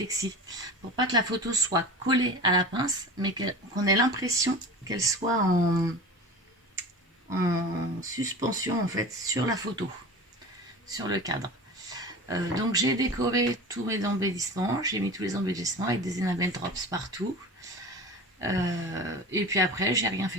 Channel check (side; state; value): both; normal; correlation 0.34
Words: pour pas que la photo soit collée à la pince, mais qu'on ait l'impression qu'elle soit en suspension en fait sur la photo, sur le cadre. Donc j'ai décoré tous mes embellissements, j'ai mis tous les embellissements avec des enamel drops partout. Et puis après, j'ai rien